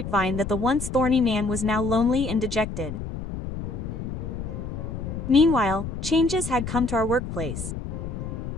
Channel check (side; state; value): left; noise; rumble, 6 dB below the sound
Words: that the once thorny man was now lonely and dejected. Meanwhile, changes had come to our workplace.